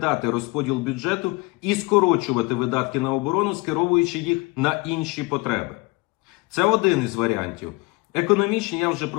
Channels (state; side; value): quieter; right; 25.4 dB